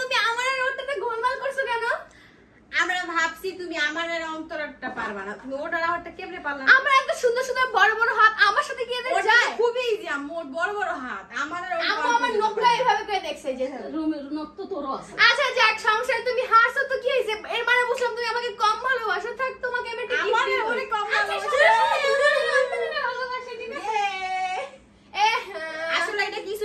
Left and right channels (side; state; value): both; identical; correlation 1.00